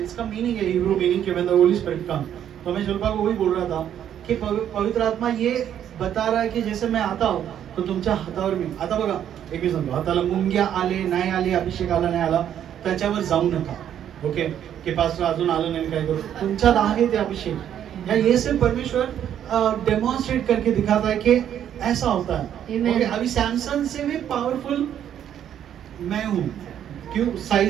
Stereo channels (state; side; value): quieter; left; 10.0 dB